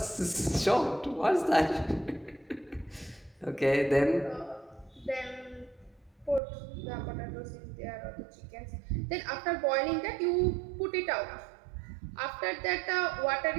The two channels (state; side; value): drops out; left; at 6.4 s